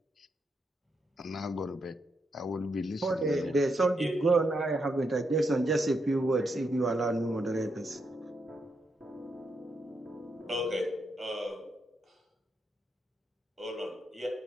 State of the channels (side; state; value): both; normal; correlation 0.81